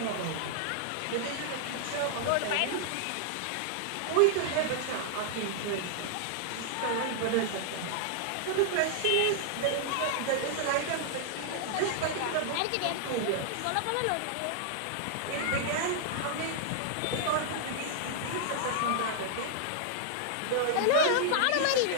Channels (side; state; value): both; different; correlation -0.01